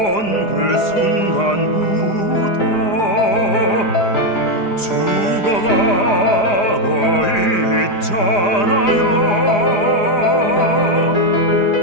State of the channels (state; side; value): late; right; 4.9 ms